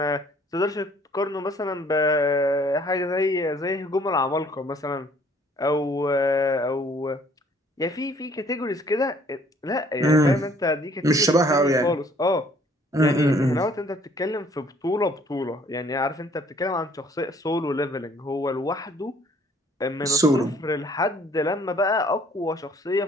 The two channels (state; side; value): normal; both; correlation 0.59